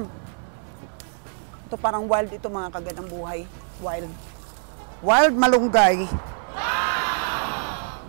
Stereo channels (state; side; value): silent; left; 62 dB below the other